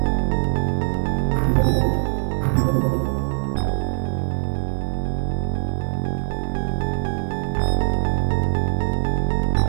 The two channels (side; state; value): left; silent; digital silence